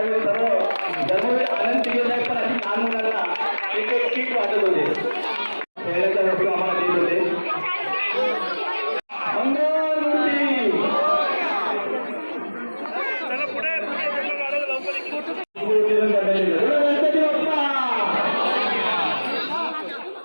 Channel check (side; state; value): both; inverted; correlation -1.00